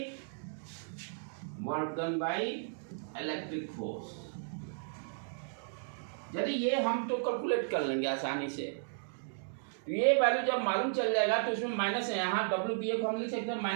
by electric force. यदि ये हम तो कैलकुलेट कर लेंगे आसानी से, तो ये वैल्यू जब मालूम चल जाएगा तो उसमें माइनस है, यहाँ WBA को हम लिख सकते हैं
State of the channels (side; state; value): left; silent; digital silence